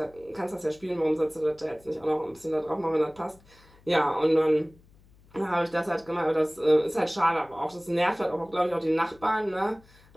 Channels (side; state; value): left; noise; hum, 28 dB below the sound